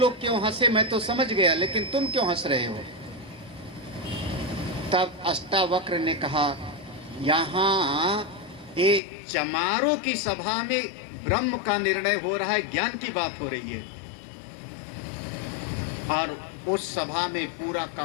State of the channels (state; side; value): drops out; right; at 9.0 s